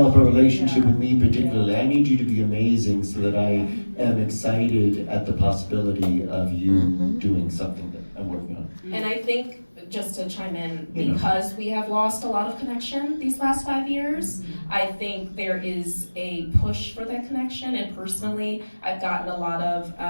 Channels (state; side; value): inverted; both; correlation -1.00